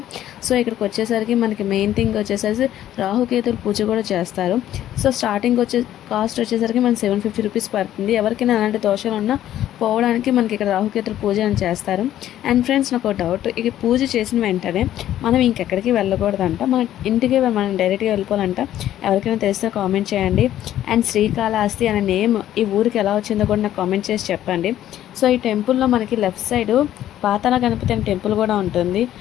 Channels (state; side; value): quieter; right; 12.3 dB